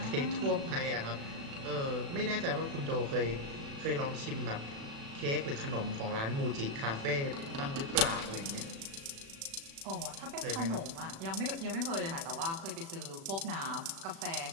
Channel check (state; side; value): late; left; 36 ms